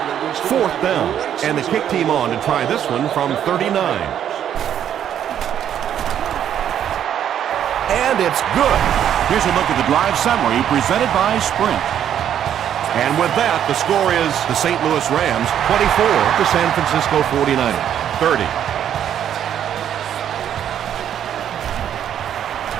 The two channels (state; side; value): quieter; left; 9.8 dB